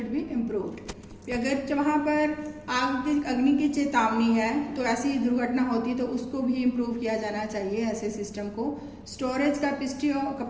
be improved. अगर वहाँ पर अग्नि की चेतावनी है तो ऐसी दुर्घटना होती है तो उसको भी इम्प्रूव किया जाना चाहिए ऐसे सिस्टम को। Storage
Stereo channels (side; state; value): both; identical; correlation 1.00